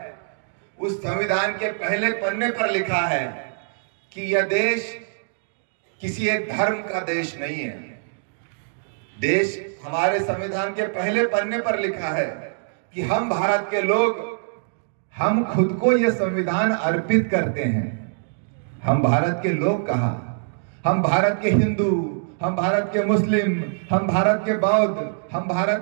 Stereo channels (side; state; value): left; silent; digital silence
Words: उस संविधान के पहले पन्ने पर लिखा है कि यह देश किसी एक धर्म का देश नहीं है। देश हमारे संविधान के पहले पन्ने पर लिखा है कि हम भारत के लोग, हम खुद को यह संविधान अर्पित करते हैं। हम भारत के लोग कहा, हम भारत के हिंदू, हम भारत के मुस्लिम, हम भारत के बौद्ध, हम